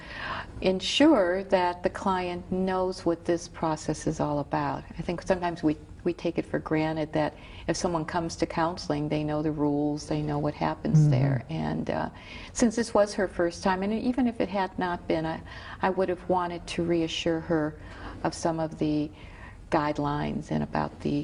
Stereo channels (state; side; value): identical; both; correlation 1.00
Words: ensure that the client knows what this process is all about. I think sometimes we we take it for granted that if someone comes to counseling, they know the rules, they know what happens there. And since this was her first time, and even if it had not been, I would have wanted to reassure her of some of the guidelines and about the